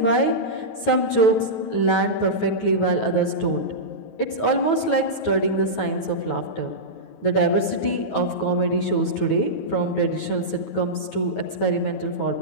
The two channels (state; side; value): late; right; 9.2 ms